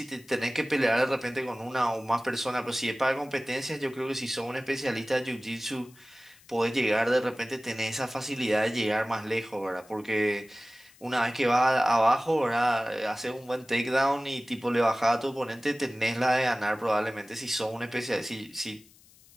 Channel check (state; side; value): noise; left; hiss, 27 dB below the sound